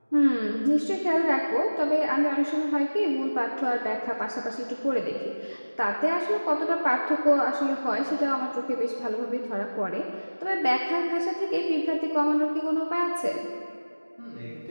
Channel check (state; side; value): inverted; both; correlation -1.00